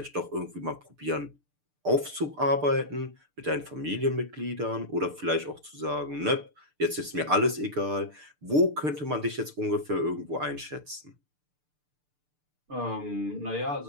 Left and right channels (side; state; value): left; late; 6.7 ms